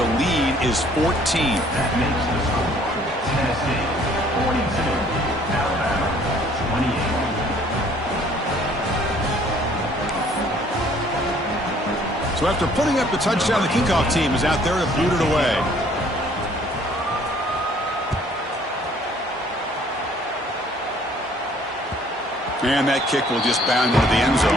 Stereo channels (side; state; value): both; normal; correlation 0.59